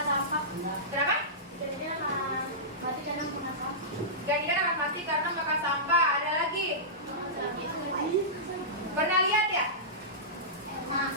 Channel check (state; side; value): normal; both; correlation -0.18